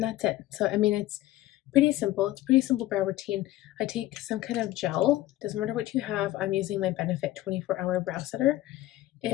it. So, I mean, it's pretty simple. It's a pretty simple brow routine. I take some kind of gel. Doesn't matter what you have. I'm using my Benefit 24-hour brow setter.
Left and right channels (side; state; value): right; quieter; 15.6 dB